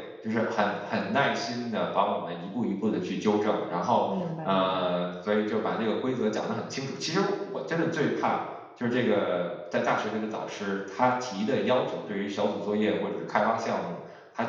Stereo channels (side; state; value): both; identical; correlation 1.00